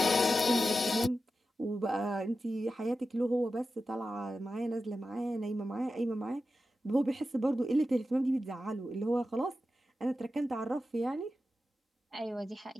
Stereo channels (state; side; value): normal; both; correlation 0.92